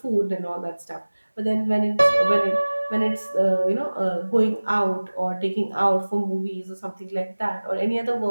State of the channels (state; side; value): inverted; both; correlation -1.00